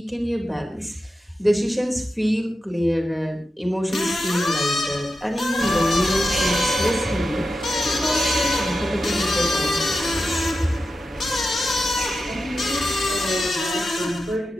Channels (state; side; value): normal; both; correlation 0.90